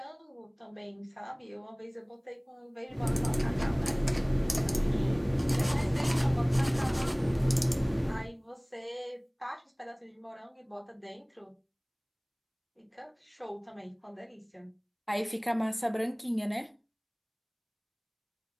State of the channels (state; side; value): identical; both; correlation 1.00